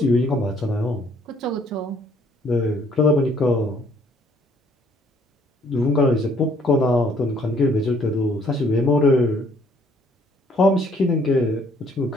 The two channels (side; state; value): both; normal; correlation 0.63